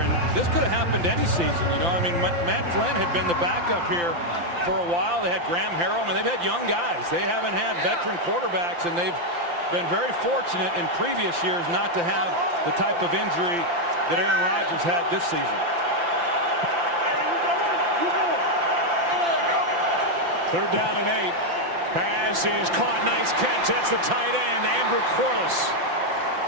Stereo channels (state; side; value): late; left; 5.8 ms